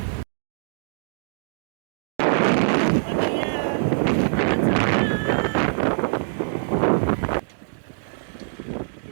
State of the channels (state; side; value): silent; left; digital silence